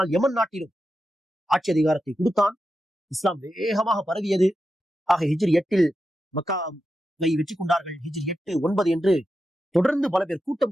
யமன் நாட்டிலும் ஆட்சி அதிகாரத்தை கொடுத்தான். இஸ்லாம் வேகமாக பரவியது. ஹிஜ்ரி 8 மக்காவை வெற்றி கொண்டார்கள். ஹிஜ்ரி 8, 9 என்று தொடர்ந்து பல பேர்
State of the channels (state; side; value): normal; both; correlation 0.89